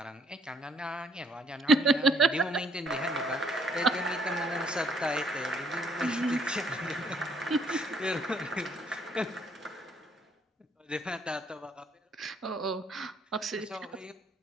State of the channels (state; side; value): normal; both; correlation 0.65